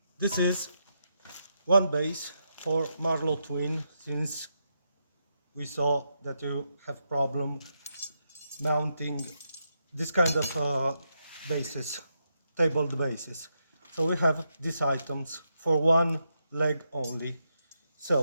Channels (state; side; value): inverted; both; correlation -0.83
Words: this is one base for Marlo twin, since we saw that you have problem mounting this kind of bases, tabled bases. So we have these items for one leg only.